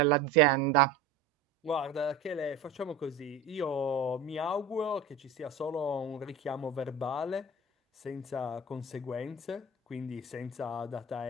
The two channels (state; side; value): quieter; left; 4.0 dB